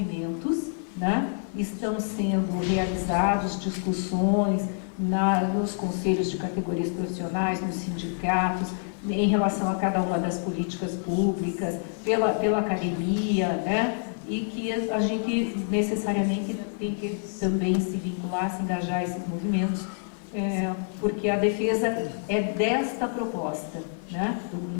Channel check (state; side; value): silent; right; 56 dB below the other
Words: né, estão sendo realizados, discussões nos conselhos de categorias profissionais, nos sindicatos, em relação a cada uma das políticas públicas, pela academia, né, e que a gente necessariamente tem que também se vincular, se engajar a esses movimentos, porque a defesa é desta proposta, né?